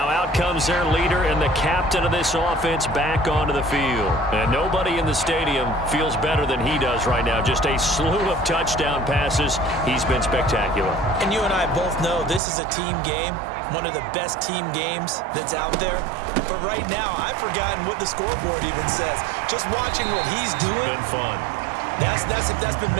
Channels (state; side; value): drops out; left; at 12.4 s